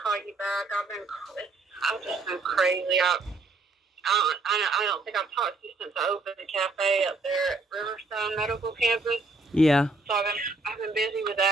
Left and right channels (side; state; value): left; quieter; 3.4 dB